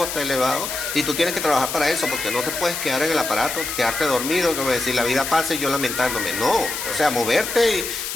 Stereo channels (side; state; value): left; noise; hiss, 5 dB below the sound